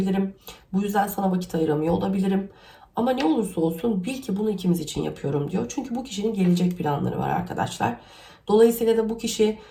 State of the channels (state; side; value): identical; both; correlation 1.00